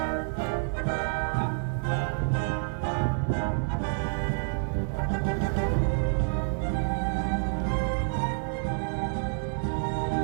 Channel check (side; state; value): left; silent; digital silence